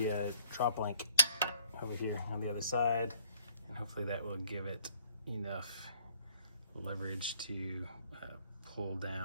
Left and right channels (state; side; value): inverted; both; correlation -0.63